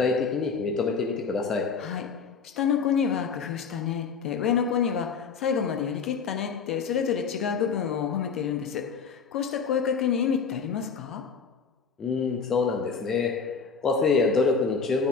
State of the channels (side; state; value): right; quieter; 5.6 dB